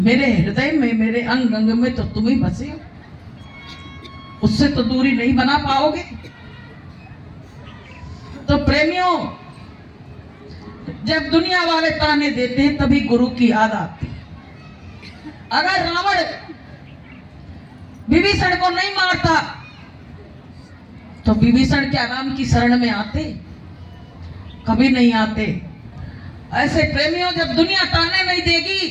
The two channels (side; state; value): both; identical; correlation 1.00